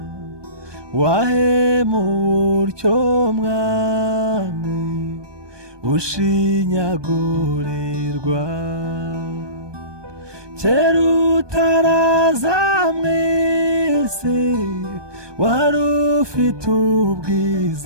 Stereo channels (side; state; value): left; late; 1.2 ms